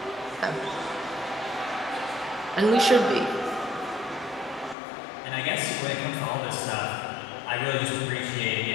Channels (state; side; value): drops out; right; at 4.8 s